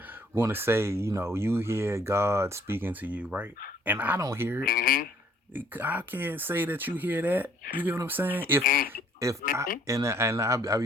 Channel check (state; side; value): normal; both; correlation 0.61